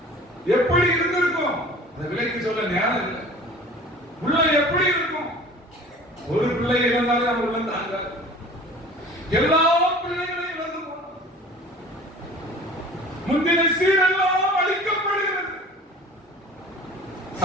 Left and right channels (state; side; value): normal; both; correlation 0.44